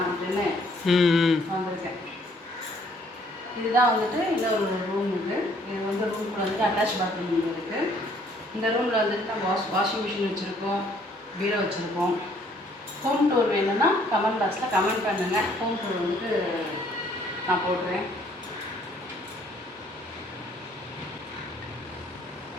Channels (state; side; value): normal; both; correlation 0.63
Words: அப்படின்னு வந்திருக்கேன். இதுதான் வந்துட்டு இன்னொரு ரூம் இருக்குது. இது வந்து ரூமுக்குள்ள வந்துட்டு அட்டாச் பாத்ரூம் இருக்குது. இந்த ரூமில் வந்துட்டு நம்ம வாஷிங் மிஷின் வச்சுருக்கோம், பீரோ வச்சுருக்கோம். ஹோம் டூர் வேணும்னா கமெண்ட் பாக்ஸில் கமெண்ட் பண்ணுங்கள். ஹோம் டூர் வந்துட்டு நான் போடுறேன்.